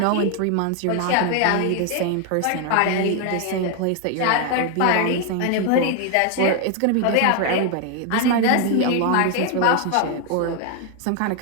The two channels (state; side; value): different; both; correlation 0.01